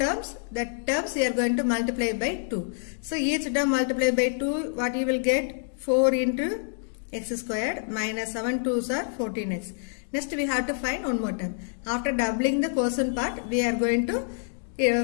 The terms we are going to multiply by 2. So each term multiply by 2. What you will get? 4 into x squared minus 7 2s are 14x. Next we have to find one more term. After doubling the quotient part, we are going to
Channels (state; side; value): silent; right; digital silence